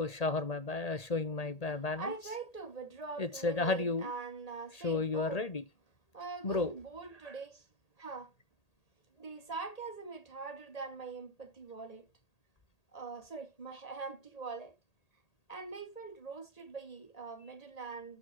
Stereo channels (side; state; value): right; late; 1.8 ms